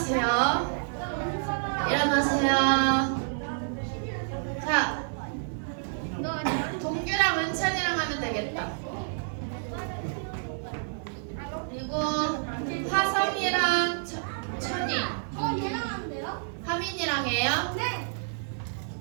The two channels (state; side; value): silent; left; digital silence